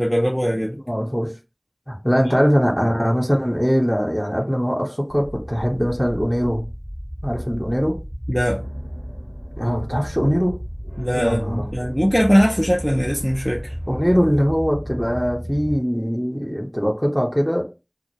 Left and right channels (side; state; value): both; identical; correlation 1.00